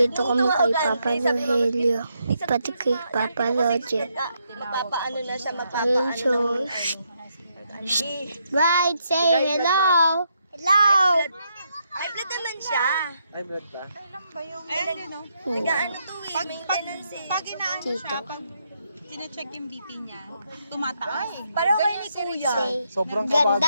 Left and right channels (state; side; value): inverted; both; correlation -0.78